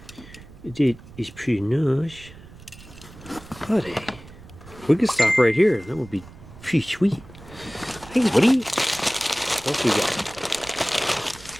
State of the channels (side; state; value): right; noise; rumble, 19 dB below the sound